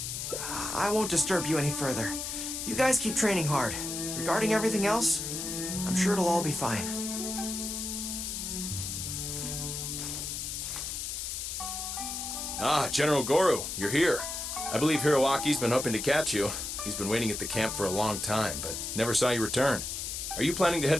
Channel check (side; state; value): left; noise; hiss, 4 dB below the sound